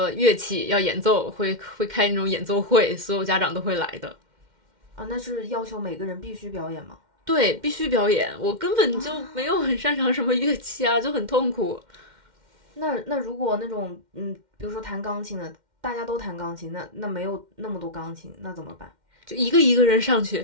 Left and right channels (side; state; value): left; late; 2.1 ms